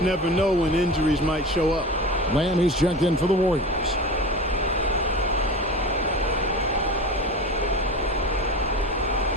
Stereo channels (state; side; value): normal; both; correlation 0.31